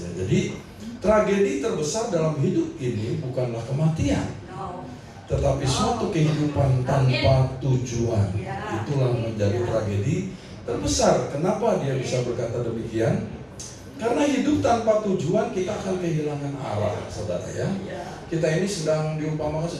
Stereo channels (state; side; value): identical; both; correlation 1.00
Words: Ya, jadi tragedi terbesar dalam hidup ini bukanlah kematian, tetapi suatu kehidupan tanpa tujuan. Itulah menjadi tragedi terbesar. Kenapa dia bisa berkata demikian? Karena hidup tanpa tujuan kita akan kehilangan arah, saudara ya. Kita ini sedang diumpamakan